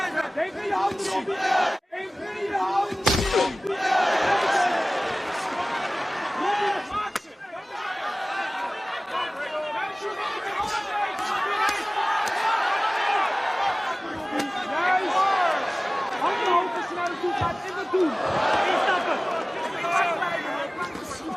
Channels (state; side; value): normal; both; correlation 0.98